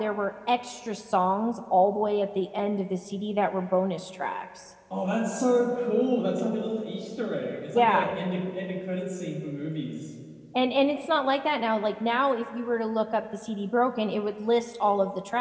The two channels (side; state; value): both; identical; correlation 1.00